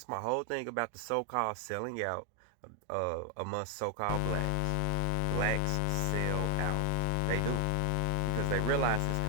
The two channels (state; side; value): different; both; correlation 0.00